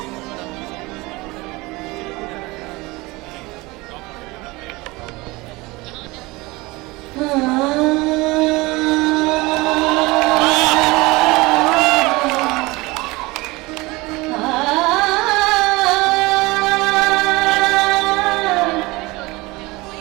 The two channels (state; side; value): quieter; left; 22.7 dB